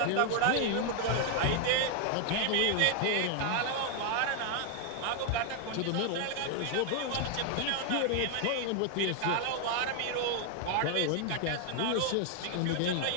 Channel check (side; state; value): both; different; correlation 0.00